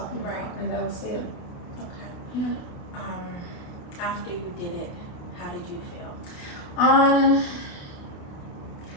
about, and that was it. Okay. Yeah. After you did it, how did you feel?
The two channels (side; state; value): right; late; 28 ms